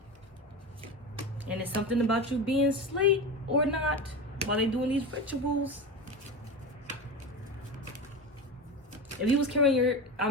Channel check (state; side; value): normal; both; correlation 0.24